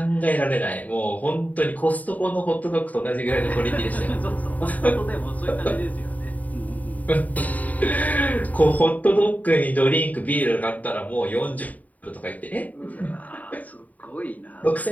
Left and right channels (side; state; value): right; late; 0.074 ms